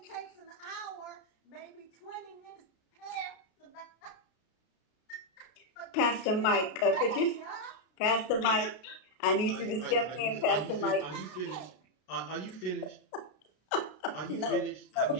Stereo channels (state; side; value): late; right; 32 ms